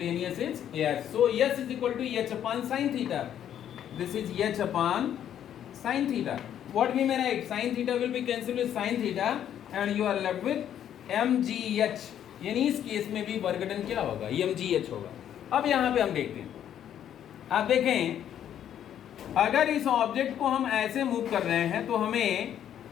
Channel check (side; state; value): right; quieter; 10.2 dB